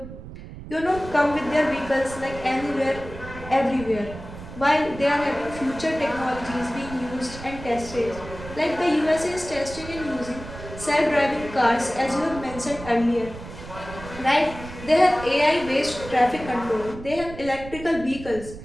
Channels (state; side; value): noise; right; rumble, 13 dB below the sound